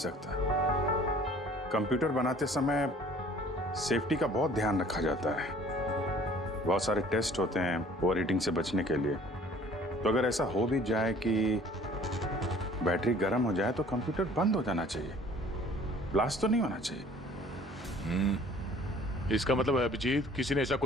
कंप्यूटर बनाते समय सेफ्टी का बहुत ध्यान रखा जाता है, बहुत सारे टेस्ट होते हैं ओवर हीटिंग से बचने के लिए। तो अगर ऐसा हो भी जाए कि बैटरी गर्म हो जाए तो कंप्यूटर बंद हो जाना चाहिए, ब्लास्ट तो नहीं होना चाहिए। इसका मतलब है अभिजीत, किसी ने ऐसा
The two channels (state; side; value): normal; both; correlation 0.53